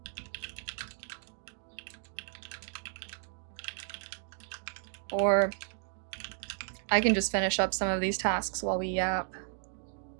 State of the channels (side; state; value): left; silent; digital silence